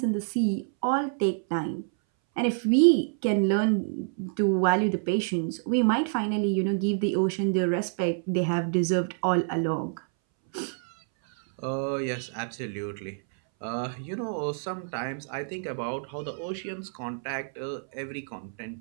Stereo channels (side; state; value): left; silent; 60 dB below the other